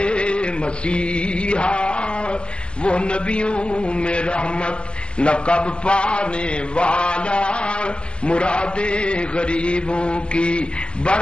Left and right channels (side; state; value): right; late; 0.056 ms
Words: مسیحا، وہ نبیوں میں رحمت لقب پانے والا، مراد غریبوں کی